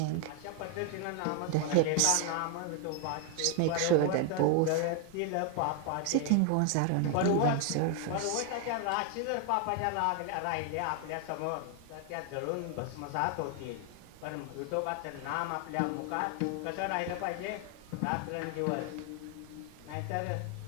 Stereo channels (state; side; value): different; both; correlation 0.00